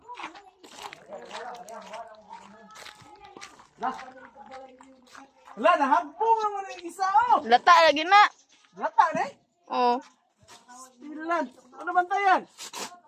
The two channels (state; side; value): identical; both; correlation 1.00